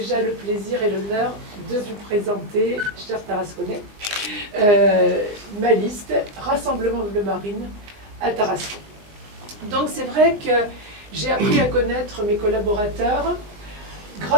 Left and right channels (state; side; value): late; left; 19 ms